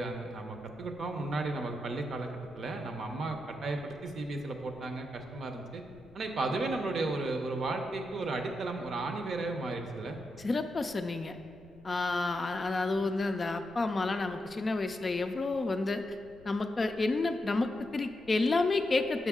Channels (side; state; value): left; noise; rumble, 24 dB below the sound